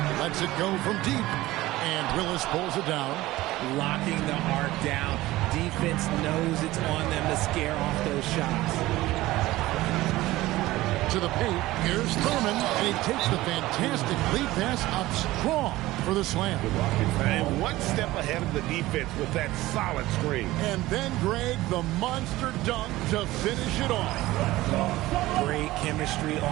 Lets it go from deep. And Willis pulls it down. Locking the arc down. Defense knows it's on them to scare off those shots. To the paint. Here's Thurman. And he takes the fantastic lead pass up strong for the slam. And one step ahead of the defense with that solid screen. And then Greg, the monster dunk to finish it off. Great chemistry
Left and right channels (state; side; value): quieter; left; 17.6 dB